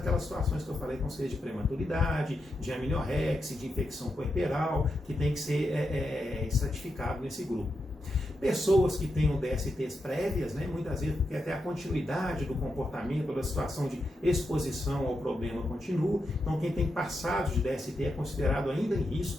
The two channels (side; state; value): both; normal; correlation 0.85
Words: situações que eu falei, com seja de prematuridade, de amniorexia, de infecção puerperal, que tem que ser estratificado nesse grupo. Pessoas que tenham DSTs prévias, né, muitas vezes porque até a continuidade do comportamento, da situação de exposição ao problema continua. Então, quem tem passado de DST é considerado ainda em